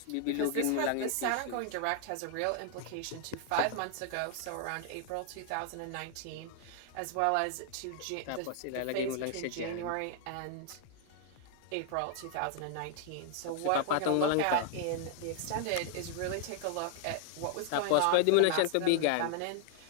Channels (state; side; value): different; both; correlation 0.00